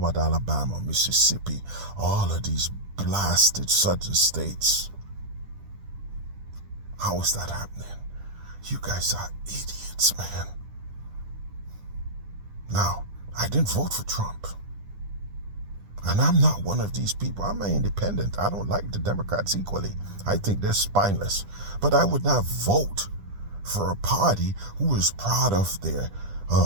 Alabama, Mississippi, all of these blasted southern states? How is that happening? You guys are idiots, man. Now, I didn't vote for Trump. And I'm not one of these people. I'm an independent. I don't like the Democrats equally. I think they're spineless. But I would not vote for a party who is proud of their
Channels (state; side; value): late; left; 10 ms